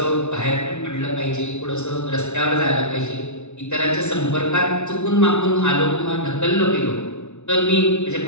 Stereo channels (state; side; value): late; right; 0.82 ms